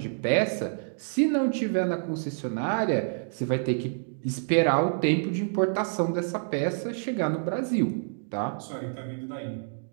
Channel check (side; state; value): left; silent; digital silence